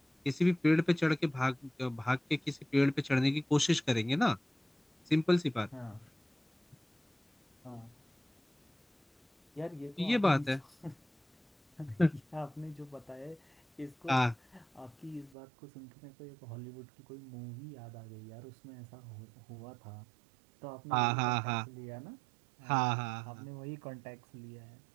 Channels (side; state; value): left; drops out; at 15.4 s